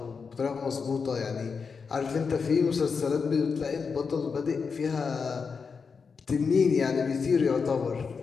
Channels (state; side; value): quieter; right; 5.4 dB